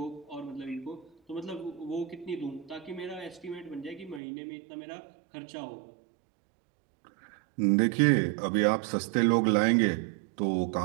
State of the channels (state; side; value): drops out; left; at 4.2 s